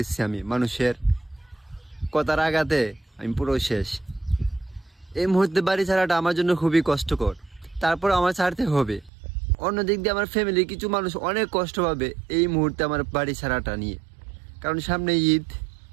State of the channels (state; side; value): drops out; left; at 9.1 s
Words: আমি, মানুষের কথার আঘাতে আমি পুরো শেষ। এই মুহূর্তে বাড়ি ছাড়াটা আমার জন্য খুবই কষ্টকর, তারপর আমার ছাড়তে হবে। অন্যদিক দিয়ে আমার ফ্যামিলির কিছু মানুষ অনেক কষ্ট পাবে এই মুহূর্তে আমার বাড়ি ছাড়াটা নিয়ে, কারণ সামনে ঈদ,